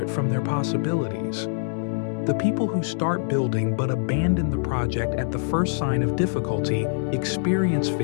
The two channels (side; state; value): right; silent; digital silence